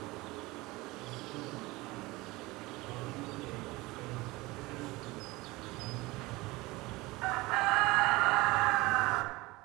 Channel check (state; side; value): quieter; left; 21.4 dB